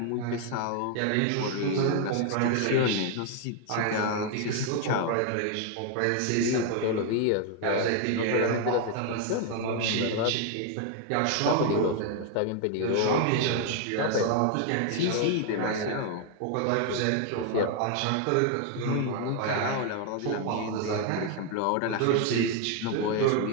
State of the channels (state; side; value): different; both; correlation 0.00